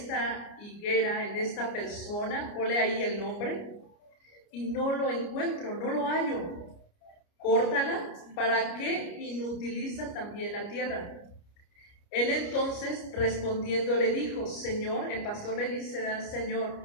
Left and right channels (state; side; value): late; right; 29 ms